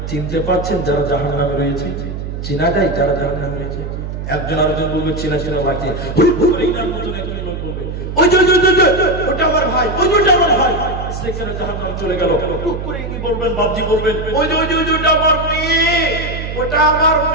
চিনতে পারছেন যারা জাহান্নামে রয়েছে? চেনা যায় যারা জাহান্নামে রয়েছে? একজন আরেকজন বলবে চেনা চেনা লাগছে। ওটা আমার ভাই, ওটা আমার ভাই, সেখানে জাহান্নাম চলে গেল। টুক করে কি বলবেন? বাবজি বলবেন ওটা আমার মেয়ে, ওটা আমার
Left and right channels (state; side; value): noise; right; hum, 6 dB below the sound